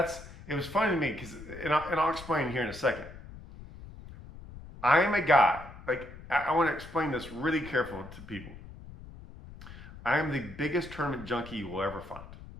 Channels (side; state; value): left; noise; rumble, 16 dB below the sound